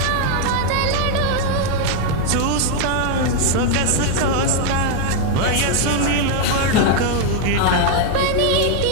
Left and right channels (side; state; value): both; different; correlation 0.01